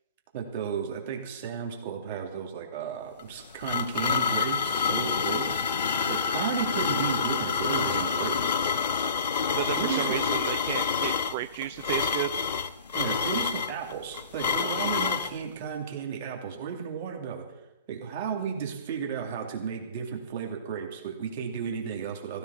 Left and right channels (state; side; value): inverted; both; correlation -0.41